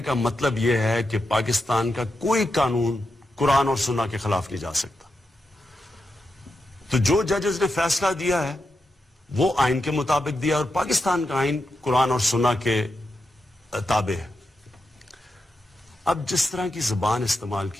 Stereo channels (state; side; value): normal; both; correlation 0.87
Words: کا مطلب یہ ہے کہ پاکستان کا کوئی قانون قرآن اور سنہ کے خلاف نہیں جا سکتا۔ تو جو ججز نے فیصلہ دیا ہے وہ آئین کے مطابق دیا، اور پاکستان کا آئین قرآن اور سنہ کے تابع ہے۔ اب جس طرح کی زبان استعمال